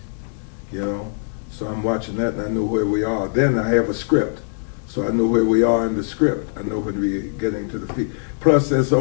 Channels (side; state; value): right; silent; 65 dB below the other